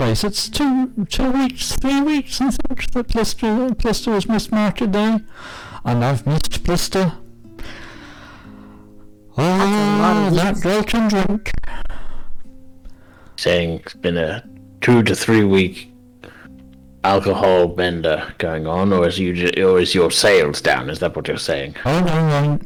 It's 2 weeks, 3 weeks, I think, that Plister has missed Market Day, and I've missed Plister. Oh, that girl can drink. Saying it's been a 2 to 3 week alcohol bender going on, or is your sales down? Is that what you're saying? Oh no,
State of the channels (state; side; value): identical; both; correlation 1.00